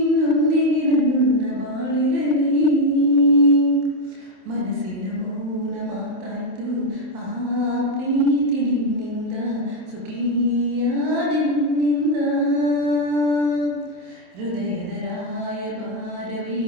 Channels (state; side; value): late; left; 27 ms